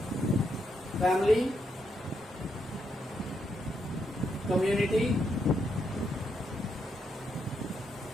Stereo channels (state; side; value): normal; both; correlation 0.79